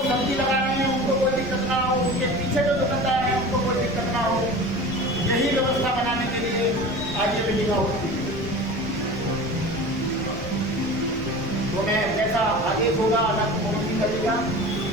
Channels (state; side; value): noise; left; rumble, 12 dB below the sound